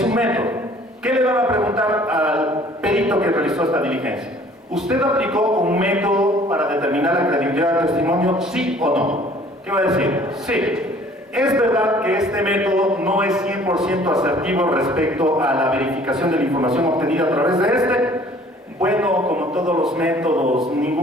un método. ¿Qué le van a preguntar al perito que realizó esta diligencia? ¿Usted aplicó un método para determinar la credibilidad del testimonio, sí o no? ¿Qué va a decir? Sí. ¿Es verdad que este método no es 100% asertivo respecto a la verificación de la información obtenida a través de este? Bueno, como todos los métodos,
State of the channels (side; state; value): both; normal; correlation 0.54